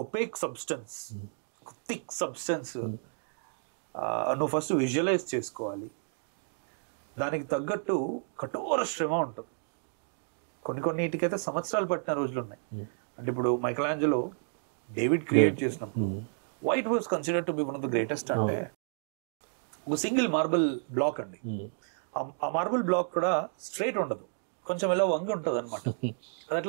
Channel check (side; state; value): left; silent; digital silence